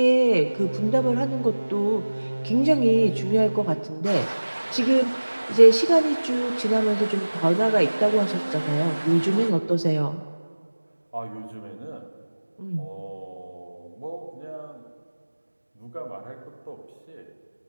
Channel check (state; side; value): inverted; both; correlation -1.00